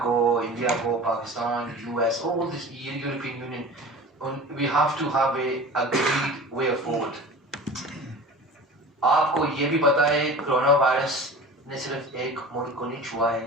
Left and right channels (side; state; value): both; normal; correlation 0.37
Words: को, India को, Pakistan, US, all this European Union, we have to have a agreed way forward. आपको ये भी पता है कोरोना वायरस ने सिर्फ एक मुल्क को नहीं छुआ है,